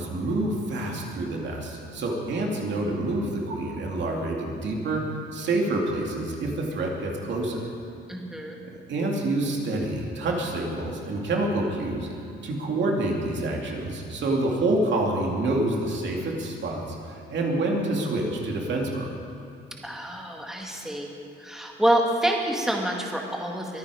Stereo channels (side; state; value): both; normal; correlation 0.60